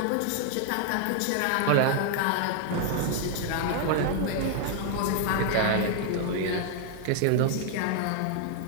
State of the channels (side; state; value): both; different; correlation 0.00